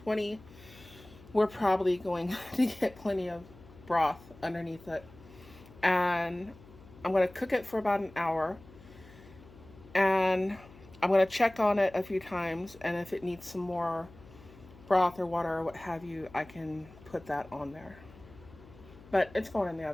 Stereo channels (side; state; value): left; noise; hum, 22 dB below the sound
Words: We're probably going to get plenty of broth underneath it. And I'm going to cook it for about an hour. And I'm going to check on it a few times, and if it needs some more broth or water or what have you, I can put that on there. But it's going in the